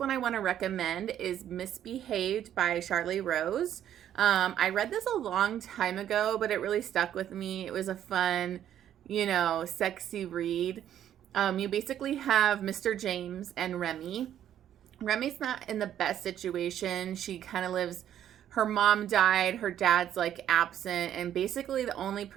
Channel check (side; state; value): left; quieter; 10.7 dB